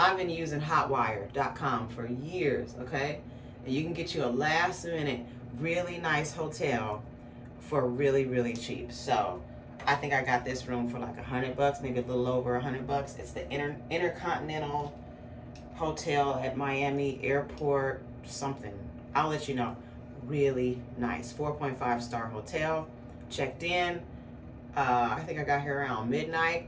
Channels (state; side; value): identical; both; correlation 1.00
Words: been using hotwire.com for years, okay? And you can get you a last minute, really nice hotel for really, really cheap. So I think I got this room for like $100, maybe a little over $100. It's the Intercontinental Hotel at Miami Airport, something. I'll let you know. Really nice, 4.5 star hotel. Checked in. I think I got here around